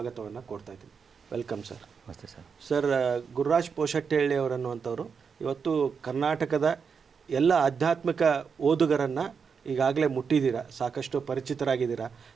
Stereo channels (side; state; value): left; quieter; 6.0 dB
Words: ಕೊಡ್ತಾ ಇದ್ದೀನಿ. Welcome sir. ನಮಸ್ತೆ ಸರ್. ಸರ್, ಗುರುರಾಜ್ ಪೋಷಟ್ಟಹಳ್ಳಿ ಅವರನ್ನುವಂಥವ್ರು ಇವತ್ತು ಕರ್ನಾಟಕದ ಎಲ್ಲ ಆಧ್ಯಾತ್ಮಿಕ ಓದುಗರನ್ನು ಈಗಾಗಲೇ ಮುಟ್ಟಿದ್ದೀರಾ, ಸಾಕಷ್ಟು ಪರಿಚಿತರಾಗಿದ್ದೀರಾ.